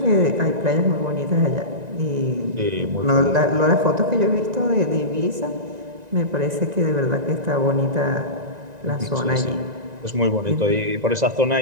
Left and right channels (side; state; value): left; late; 1.9 ms